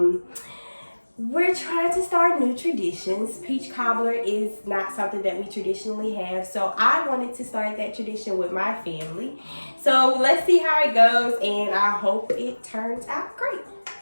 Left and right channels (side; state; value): both; inverted; correlation -1.00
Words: We're trying to start new traditions. Peach cobbler is not something that we traditionally have, so I wanted to start that tradition with my family. So let's see how it goes, and I hope it turns out great.